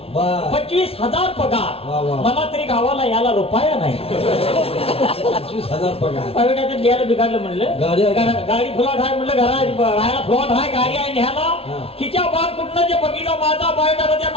बर 25,000 पगार. वा, वा. मला तरी गावाला याला रुपया नाही. 25,000 पगार प्रायव्हेट लिहायला बिघडलं म्हणलं. गाडी आहे का? गाडी फ्लॉट आहे म्हणलं. राहायला फ्लॉट आहे, गाडी आहे न्यायला. हा. तिच्या बाळ कुठनं जे बघितलं माझा बायोडाटा त्या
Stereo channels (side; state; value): right; late; 0.28 ms